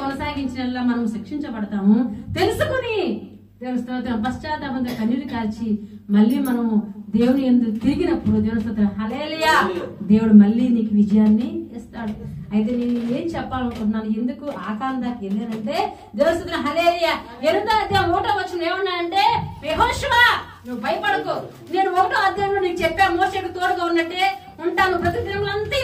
కొనసాగించిన మనం శిక్షించబడతాము. తెలుసుకుని దేవుని స్తోత్రం పశ్చాత్తాపంతో కన్నీరు కాల్చి మళ్ళీ మనము దేవుని యందు తిరిగినప్పుడు దేవుని స్తోత్రం హల్లెలూయా, దేవుడు మళ్ళీ నీకు విజయాన్ని ఇస్తాడు. అయితే నేను ఏం చెప్పాలనుకుంటున్నాను, ఎందుకు ఆకాందాకి వెళ్ళానంటే దేవుని స్తోత్రం హల్లెలూయా. 8వ అధ్యాయం 1వ వచనం ఏమన్నానంటే, యెహోషువా నువ్వు భయపడకు, నేను 1వ అధ్యాయంలో నీకు చెప్పా మోషేకు తోడుగా ఉన్నట్టే ఉంటాను, ప్రతి దినములంతా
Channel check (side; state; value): both; identical; correlation 1.00